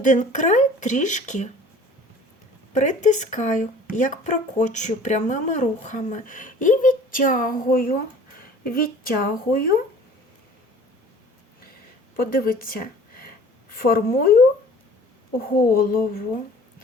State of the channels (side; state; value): both; normal; correlation 0.48